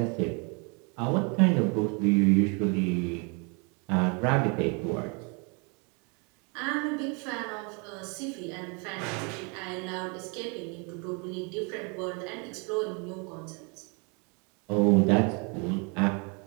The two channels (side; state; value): left; quieter; 33.2 dB